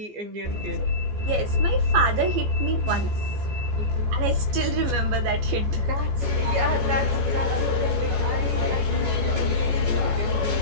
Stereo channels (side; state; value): left; late; 14 ms